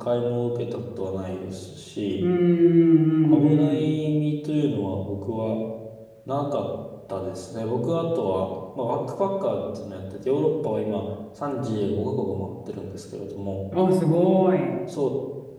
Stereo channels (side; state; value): both; identical; correlation 1.00